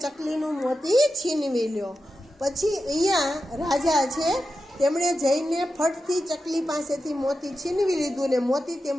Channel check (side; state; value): both; normal; correlation 0.90